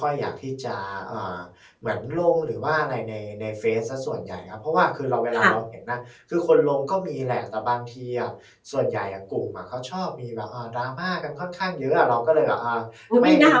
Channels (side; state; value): both; identical; correlation 1.00